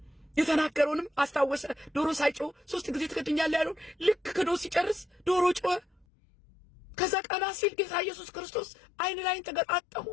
የተናገረውንም አስታወሰ። ዶሮ ሳይጮህ 3 ጊዜ ትክድኛለህ ያለውን ልክ ክዶ ሲጨርስ ዶሮ ጮኸ። ከዛ ቀና ሲል ጌታ ኢየሱስ ክርስቶስ አይን ላይን ተገጣጠሙ።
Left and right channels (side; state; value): right; drops out; at 6.1 s